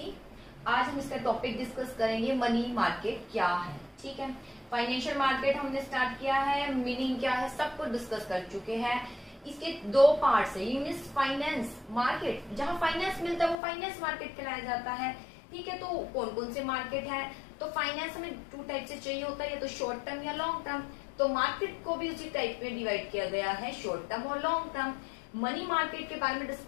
आज हम इसका टॉपिक डिस्कस करेंगे मनी मार्केट क्या है। ठीक है, फाइनेंशियल मार्केट हमने स्टार्ट किया है, मीनिंग क्या है सब कुछ डिस्कस कर चुके हैं। इसके दो पार्ट्स है, मीन्स फाइनेंस मार्केट, जहाँ फाइनेंस मिलता है वो फाइनेंस मार्केट कहलाया जाता है। ठीक है, तो कौन कौन से मार्केट है, तो फाइनेंस हमें 2 टाइप से चाहिए होता है, या तो शॉर्ट टर्म या लॉन्ग टर्म। तो मार्केट को भी उसी टाइप में डिवाइड किया गया है, शॉर्ट टर्म और लॉन्ग टर्म। मनी मार्केट के बारे में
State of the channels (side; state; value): right; drops out; at 13.6 s